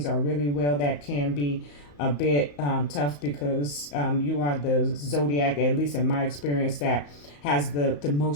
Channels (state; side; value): late; right; 35 ms